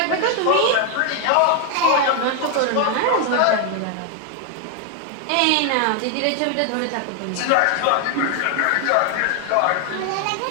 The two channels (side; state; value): both; different; correlation 0.01